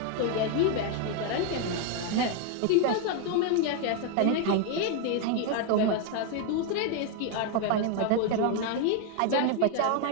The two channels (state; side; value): different; both; correlation 0.01